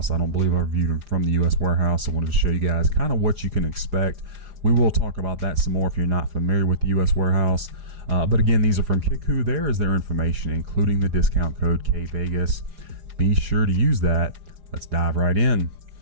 I don't believe I reviewed them from the US warehouse. I wanted to show you guys kind of what you can expect. We will talk about that some more if you're not familiar with the US warehouse. But again, these are from Kickwho. There is their information, including the discount code kvegas. Be sure to use that. Let's dive right in.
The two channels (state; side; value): late; left; 4.9 ms